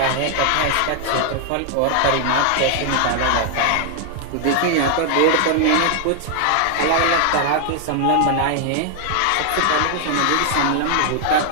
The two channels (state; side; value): different; both; correlation 0.00